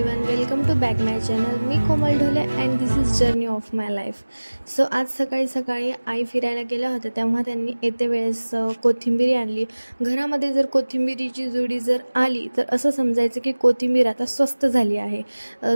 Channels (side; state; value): both; inverted; correlation -1.00